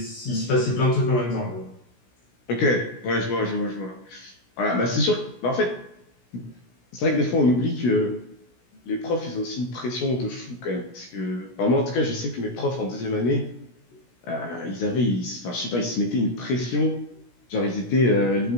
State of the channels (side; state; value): right; late; 16 ms